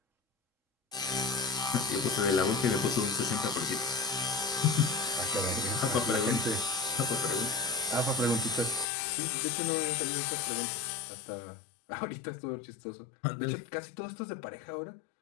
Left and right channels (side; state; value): right; drops out; at 8.8 s